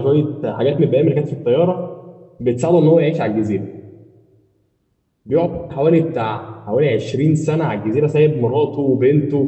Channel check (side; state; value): both; identical; correlation 1.00